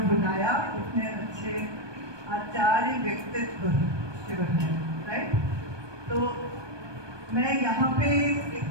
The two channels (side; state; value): left; late; 1.2 ms